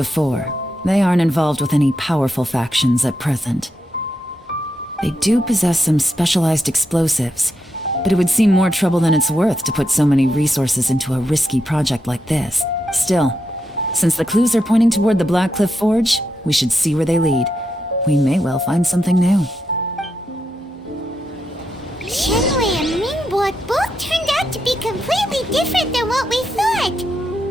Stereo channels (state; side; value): normal; both; correlation 0.84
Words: They aren't involved with any powerful factions at present. They do possess some specialized explosives, but it would seem more trouble than it's worth to put so many resources into a risky project like this. Still, since the clues are pointing toward the Blackcliff Forge, we should see where they lead. We may well find something new. Qianwei and Mingbo both turned out to be completely different than what we thought.